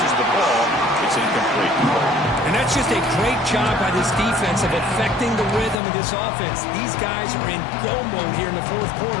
the ball. It's incomplete. And that's just a great job by this defense of affecting the rhythm of this offense. These guys are in go mode here in the fourth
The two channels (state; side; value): drops out; right; at 5.8 s